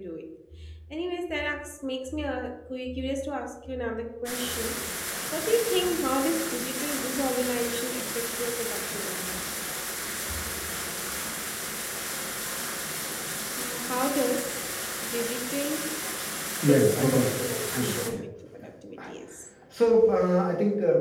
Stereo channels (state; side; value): identical; both; correlation 1.00